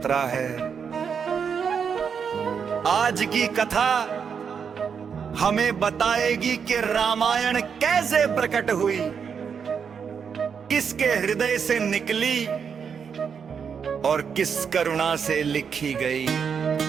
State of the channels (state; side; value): quieter; left; 6.7 dB